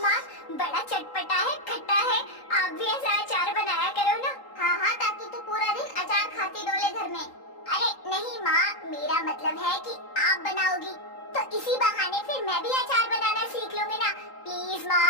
बड़ा चटपटा है, खट्टा है, आप भी ऐसा अचार बनाया करो ना। हाँ, ताकि तू पूरा दिन अचार खाती डोले घर में। अरे नहीं माँ, मेरा मतलब है कि आप बनाओगी तो इसी बहाने फिर मैं भी अचार बनाना सीख लूंगी ना। प्लीज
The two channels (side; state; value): right; late; 3.8 ms